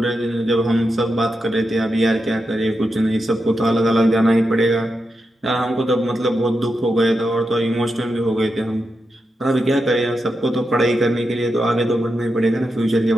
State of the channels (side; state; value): both; normal; correlation 0.87